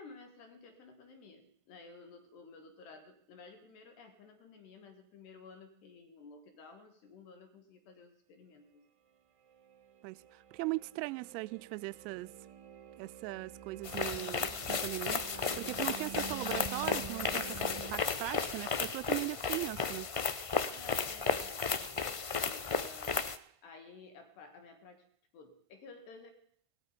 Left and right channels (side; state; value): left; late; 1.5 ms